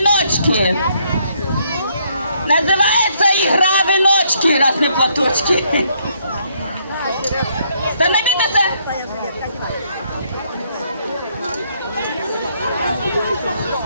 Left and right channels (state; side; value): inverted; both; correlation -0.70